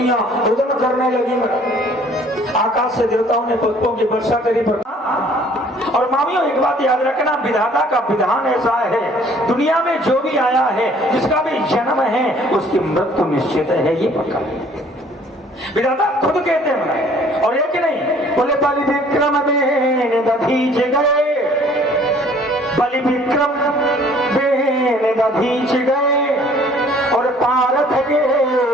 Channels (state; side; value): normal; both; correlation 0.56